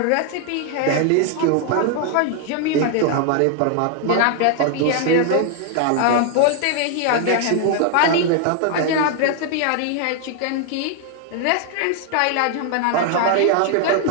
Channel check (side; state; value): both; different; correlation 0.00